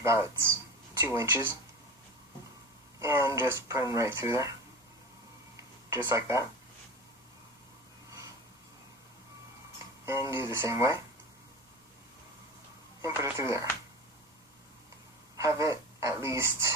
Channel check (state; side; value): normal; both; correlation 0.31